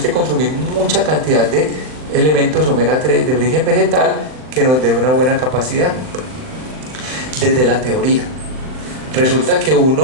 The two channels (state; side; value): late; left; 39 ms